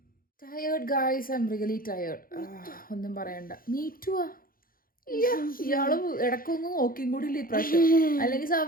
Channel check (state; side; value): late; right; 0.42 ms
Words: Tired guys, I am really tired. ഒന്നും പറയണ്ട. മീറ്റുവാ ഇയാള് ഇടക്കൊന്നും നോക്കിയും കൂടി ഇല്ല ഇപ്രാവശ്യം. അല്ലെങ്കിൽ